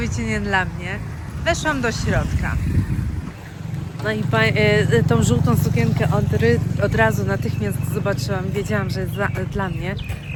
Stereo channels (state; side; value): identical; both; correlation 1.00